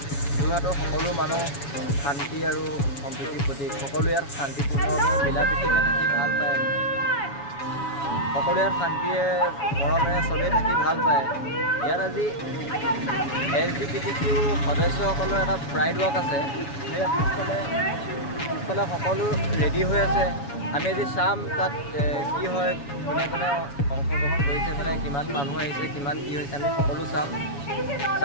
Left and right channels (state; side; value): late; right; 7.1 ms